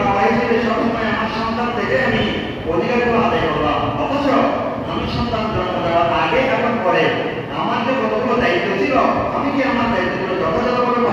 বাবা হিসেবে সবসময় আমার সন্তান থেকে আমি অধিকারগুলো আদায় করলাম, অথচ আমি সন্তান জন্ম দেওয়ার আগে এবং পরে আমার যে কতগুলো দায়িত্ব ছিল আমি কি আমার দায়িত্বগুলো যথাযথভাবে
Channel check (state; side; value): identical; both; correlation 1.00